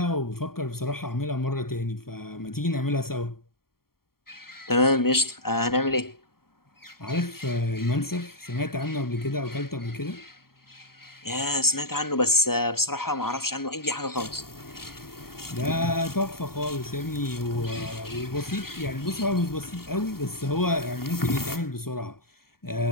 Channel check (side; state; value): right; late; 0.93 ms